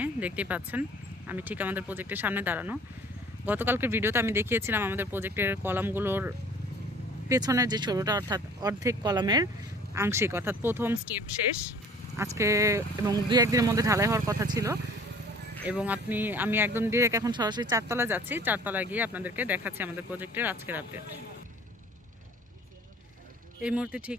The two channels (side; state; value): both; normal; correlation 0.50